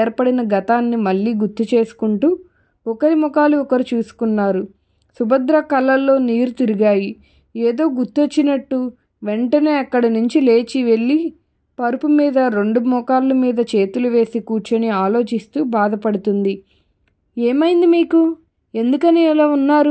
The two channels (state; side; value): identical; both; correlation 1.00